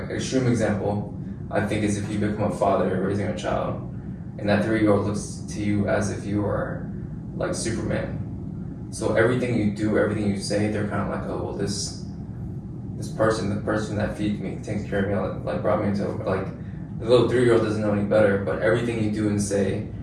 extreme example, I think, is if you become a father, you're raising a child, and that 3-year-old looks to you as if you are like Superman. So everything you do, everything you say, they're kind of like, oh well, this person, the person that feeds me, takes care of me, like brought me into, like, the little 3-year-old doesn't know any better, but everything you do and say,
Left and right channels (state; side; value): identical; both; correlation 1.00